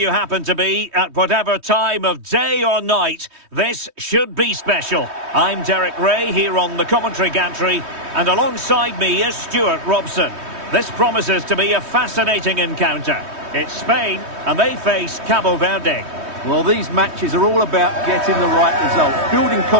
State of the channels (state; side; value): late; left; 3.2 ms